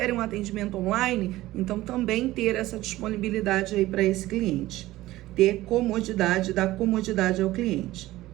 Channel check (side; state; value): left; quieter; 16.7 dB